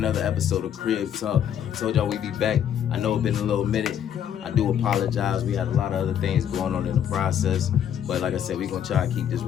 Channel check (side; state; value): right; quieter; 9.4 dB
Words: episode of Crib Talk. I told y'all we'd be back. I know it's been a little minute. I do apologize. We had a lot of other things going on in the process. But like I said, we're going to try to keep this